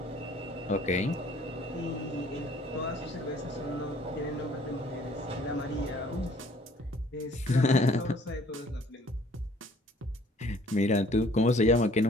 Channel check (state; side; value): normal; both; correlation 0.57